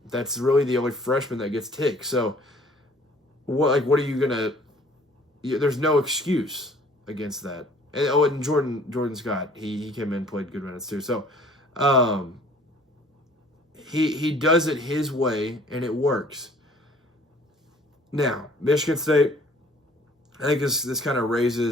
that's really the only freshman that gets ticked. So, what are you going to – there's no excuse against that. And Jordan Scott, he came in, played good minutes too. So, he does it his way, and it works. Now, Michigan State, I think this kind of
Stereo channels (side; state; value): both; normal; correlation 0.54